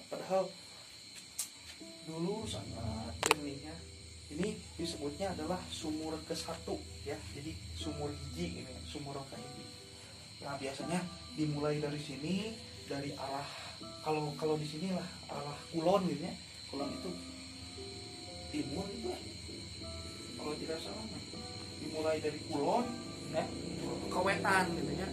padahal dulu sangat jernihnya. Ini disebutnya adalah sumur ke-1 ya, jadi sumur hiji ini, sumur ke-1. Nah biasanya dimulai dari sini, dari arah kalau di sini lah arah kulon gitu ya, kulon itu timur itu ya, kalau tidak salah dimulai dari kulon ya ke wetan gitu ya.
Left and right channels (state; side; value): identical; both; correlation 1.00